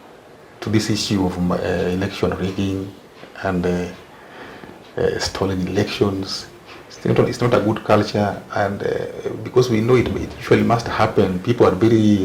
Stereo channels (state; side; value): identical; both; correlation 1.00